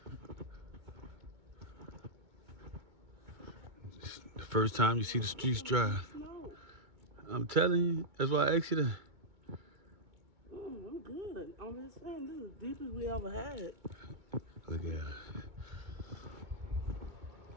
The first time you see the streets dry. I'm telling you, that's why I asked you to. I'm good. I'm just saying, this is the deepest we ever had. Look at it.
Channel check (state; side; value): late; left; 2.2 ms